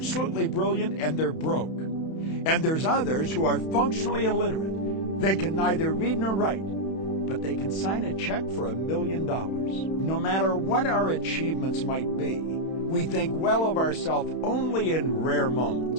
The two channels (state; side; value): late; right; 31 ms